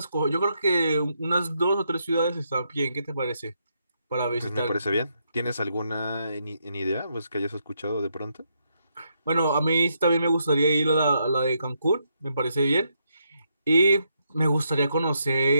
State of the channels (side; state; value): both; inverted; correlation -0.79